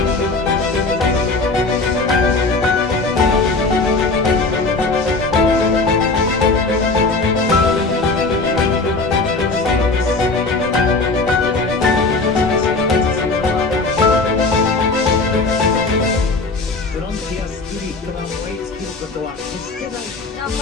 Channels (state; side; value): quieter; right; 3.6 dB